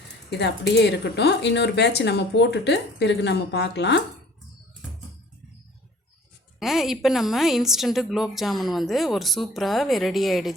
இது அப்படியே இருக்கட்டும். இன்னொரு பேட்ச் நம்ம போட்டுட்டு பிறகு நம்ம பார்க்கலாம். இப்போ நம்ம இன்ஸ்டண்ட்டு குலோப் ஜாமுன் வந்து ஒரு சூப்பராக ரெடி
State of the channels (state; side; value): normal; both; correlation 0.51